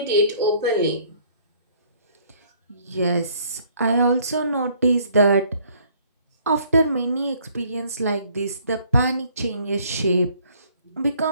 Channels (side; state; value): both; inverted; correlation -0.60